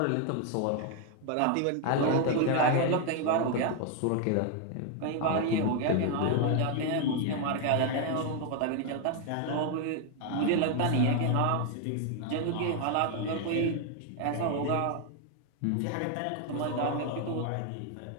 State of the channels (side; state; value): both; different; correlation 0.01